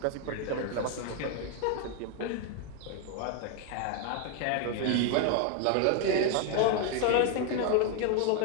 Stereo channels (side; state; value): both; different; correlation 0.01